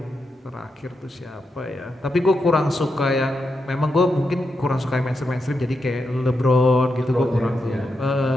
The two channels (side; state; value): both; normal; correlation 0.85